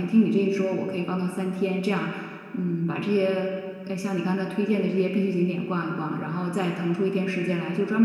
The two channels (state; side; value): identical; both; correlation 1.00